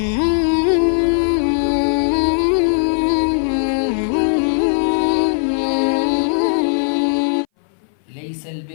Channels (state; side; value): silent; right; 61 dB below the other